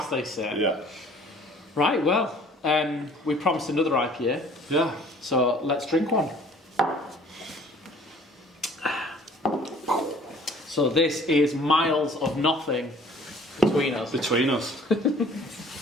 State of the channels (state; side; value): normal; both; correlation 0.53